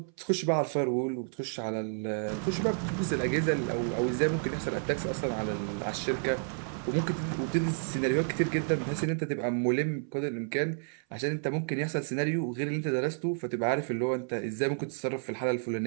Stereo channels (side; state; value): left; silent; 57 dB below the other